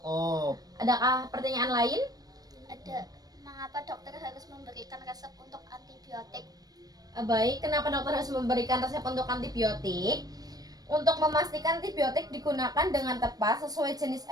Adakah pertanyaan lain? Ada. Mengapa dokter harus memberikan resep untuk antibiotik? Baik, kenapa dokter harus memberikan resep untuk antibiotik? Untuk memastikan antibiotik digunakan dengan tepat sesuai jenis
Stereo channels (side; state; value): left; late; 0.19 ms